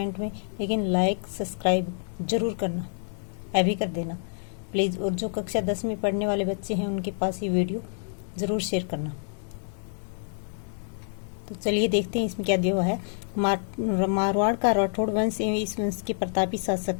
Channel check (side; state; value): right; silent; digital silence